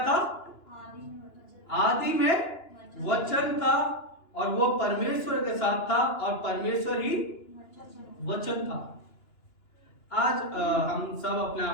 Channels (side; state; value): right; late; 2.9 ms